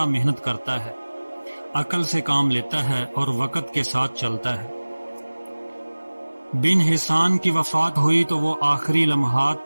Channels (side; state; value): both; inverted; correlation -1.00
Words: محنت کرتا ہے، عقل سے کام لیتا ہے اور وقت کے ساتھ چلتا ہے۔ بن حسان کی وفات ہوئی تو وہ آخری